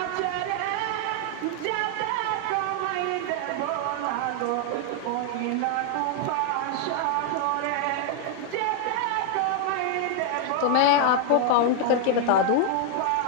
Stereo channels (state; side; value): different; both; correlation 0.00